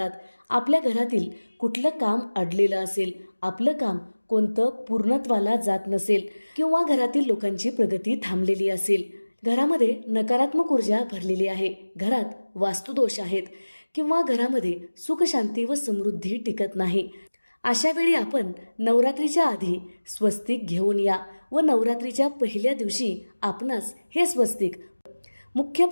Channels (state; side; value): inverted; both; correlation -1.00